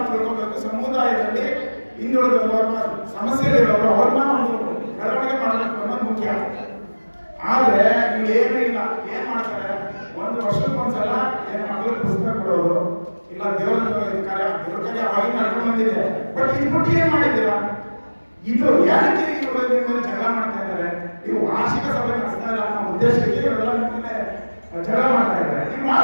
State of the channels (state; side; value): inverted; both; correlation -1.00